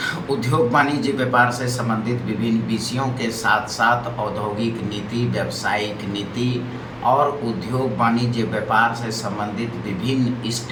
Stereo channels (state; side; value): identical; both; correlation 1.00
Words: उद्योग वाणिज्य व्यापार से संबंधित विभिन्न विषयों के साथ साथ औद्योगिक नीति, व्यावसायिक नीति और उद्योग वाणिज्य व्यापार से संबंधित विभिन्न